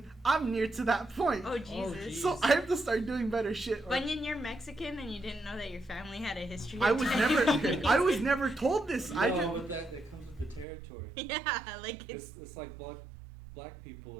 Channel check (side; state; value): left; drops out; at 10.7 s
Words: I'm near to that point. Oh Jesus. geez. So I have to start doing better shit. or- Bunyan, you're Mexican and you didn't know that your family had a history of I was never diabetes. I was never told this. No, I just but that comes with the territory. Yeah, like It's like black